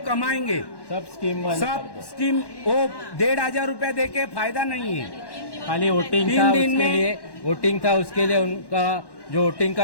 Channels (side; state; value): right; late; 1.1 ms